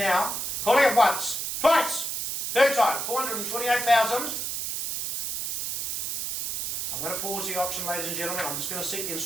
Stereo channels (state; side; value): noise; right; hiss, 3 dB below the sound